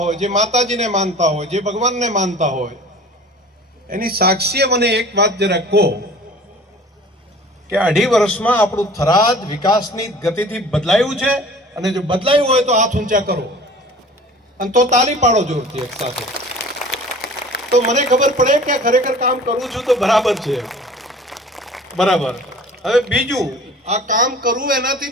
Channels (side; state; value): both; normal; correlation 0.45